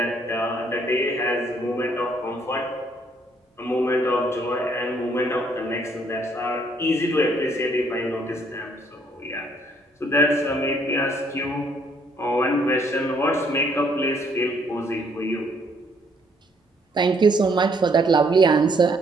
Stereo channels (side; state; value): both; normal; correlation 0.66